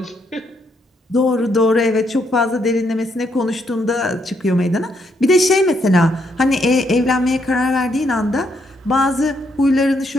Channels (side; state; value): both; normal; correlation 0.75